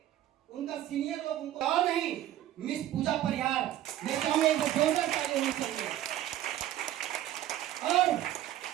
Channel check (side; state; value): left; quieter; 13.1 dB